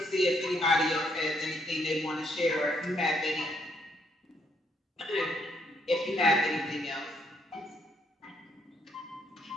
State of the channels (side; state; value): both; normal; correlation 0.72